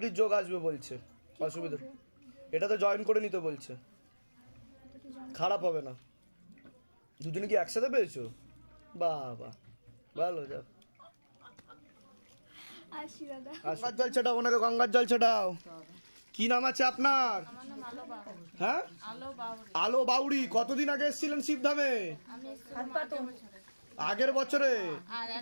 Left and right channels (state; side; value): inverted; both; correlation -1.00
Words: যোগ আসবে বলছে, অসুবিধা এটা তো জয়েন করে নিতে বলছে, খারাপ হবে না। দুজনে কি একসাথে পেয়েছো? বাবা ভালো, যাও আসি দাদা। গঙ্গার জল ছেটাও, ওনাকে গঙ্গার জল ছেটাও। কি নাম আছে আপনার? হ্যাঁ আলো বাউরি। কতদিন আগে এসেছিলেন শিবধামে? আগের বছরে।